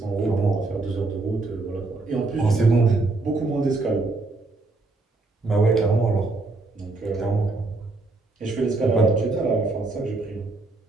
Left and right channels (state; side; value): quieter; left; 3.4 dB